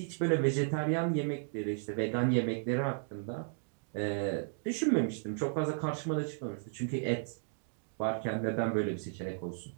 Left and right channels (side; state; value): left; silent; digital silence